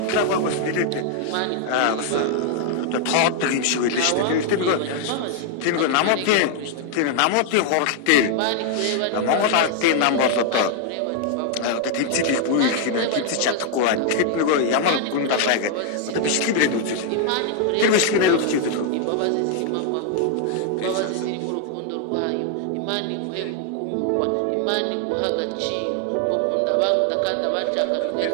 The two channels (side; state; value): both; different; correlation 0.00